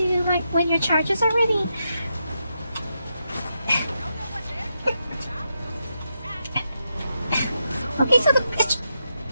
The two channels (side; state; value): both; inverted; correlation -0.84